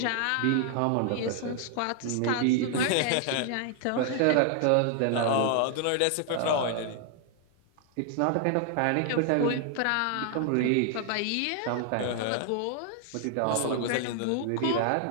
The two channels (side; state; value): both; different; correlation 0.00